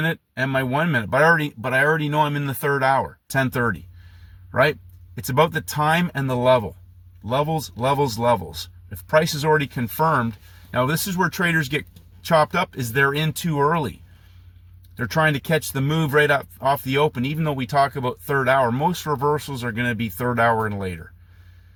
and my 1 minute, but I already know I'm in the third hour, 10:30, right? It's about the time and the level. Levels. If price is already confirmed, now this is where traders get chopped up, is they're in too early. They're trying to catch the move right up off the open. Even though we talk about third hour, most reversals are going to be third hour and later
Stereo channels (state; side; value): identical; both; correlation 1.00